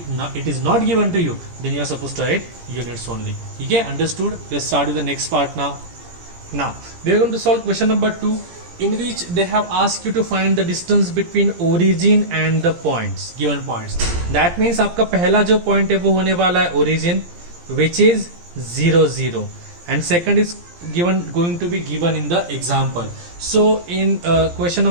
is not given to you then you are supposed to write units only. ठीक है, understood? Let's start with the next part now. Now we are going to solve question number 2, in which they have asked you to find the distance between origin and the points, given points. That means आपका पहला जो point है वो होने वाला है origin, which is 0 0, and second is going to be given in the example. So in question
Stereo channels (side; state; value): left; late; 17 ms